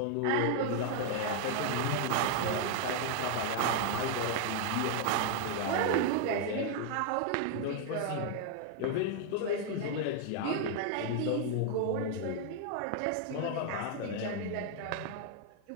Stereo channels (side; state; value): both; different; correlation 0.00